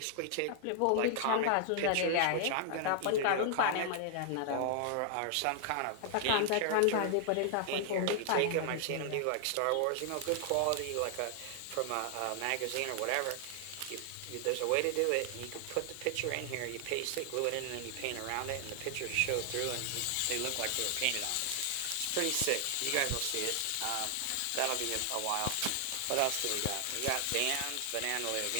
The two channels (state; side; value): different; both; correlation 0.00